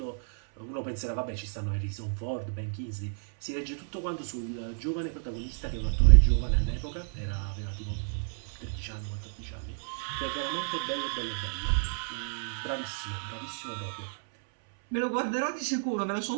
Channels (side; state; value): left; silent; 57 dB below the other